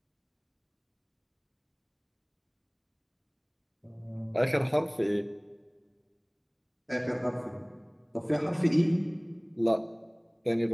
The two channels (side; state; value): both; identical; correlation 1.00